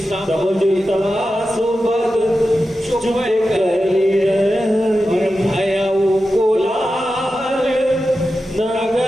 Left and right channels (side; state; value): both; normal; correlation 0.91